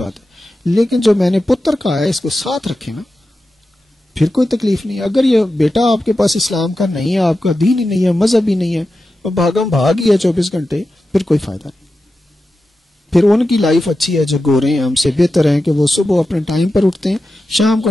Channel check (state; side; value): normal; both; correlation 0.92